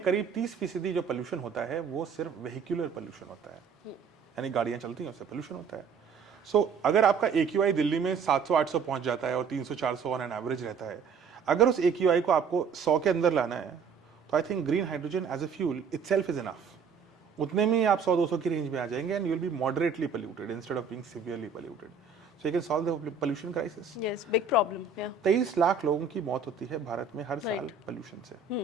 करीब 30% जो पोल्यूशन होता है वो सिर्फ वेहिकुलर पोल्यूशन होता है, यानी गाड़ियां चलती हैं उससे पोल्यूशन होता है। सो अगर आपका AQI दिल्ली में 700-800 पहुंच जाता है और 300-400 ऑन एन एवरेज रहता है, अगर उस AQI को आपको 100 के अंदर लाना है, तो I think green hydrogen as a fuel itself is enough. उतने में ही आप 100-200 की रेंज में आ जाएंगे, and you will be moderately polluted instead of being severely polluted. So you can solve the pollution crisis. Yes, big problem. 23 lakh लोगों की मौत होती है भारत में हर साल पोल्यूशन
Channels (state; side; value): quieter; left; 5.6 dB